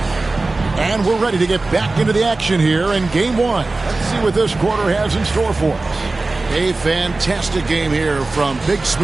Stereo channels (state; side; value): quieter; left; 3.3 dB